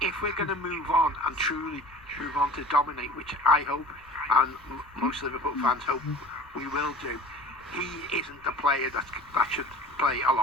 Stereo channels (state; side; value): noise; left; rumble, 29 dB below the sound